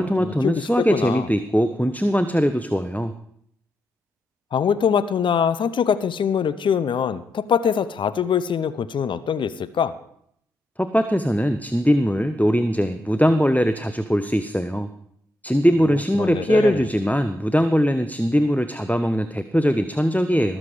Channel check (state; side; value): normal; both; correlation 0.85